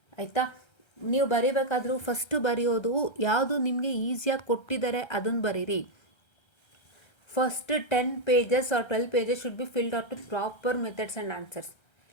ಆಯಿತಾ. ನೀವು ಬರಿಬೇಕಾದ್ರೂ ಫಸ್ಟು ಬರೆಯೋದು ಯಾವುದು ನಿಮಗೆ ಈಸಿಯಾಗಿ ಕೊಟ್ಟಿದ್ದಾರೆ ಅದನ್ನು ಬರೀರಿ. First 10 pages or 12 pages should be filled out with proper methods and answers.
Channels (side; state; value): right; late; 1.3 ms